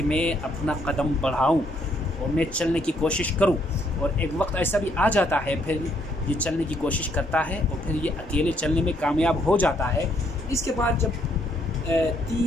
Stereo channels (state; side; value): normal; both; correlation 0.70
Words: میں اپنا قدم بڑھاؤں اور میں چلنے کی کوشش کروں. اور ایک وقت ایسا بھی آ جاتا ہے پھر یہ چلنے کی کوشش کرتا ہے اور پھر یہ اکیلے چلنے میں کامیاب ہو جاتا ہے. اس کے بعد جب